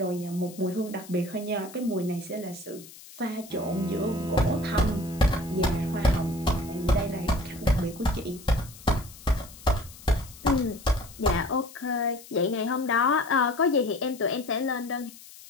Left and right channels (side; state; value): left; noise; hiss, 19 dB below the sound